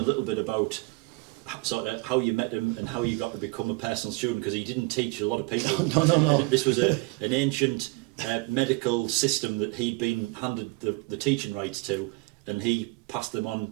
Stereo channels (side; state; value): left; quieter; 26.1 dB